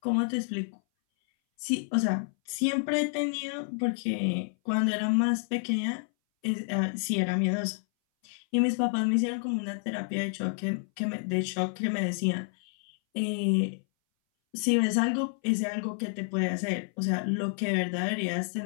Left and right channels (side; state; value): right; silent; 58 dB below the other